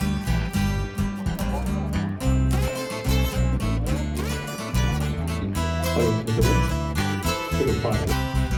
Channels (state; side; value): identical; both; correlation 1.00